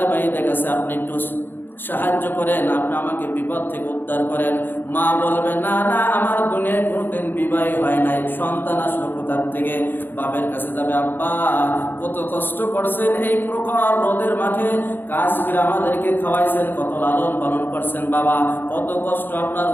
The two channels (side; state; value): right; late; 0.096 ms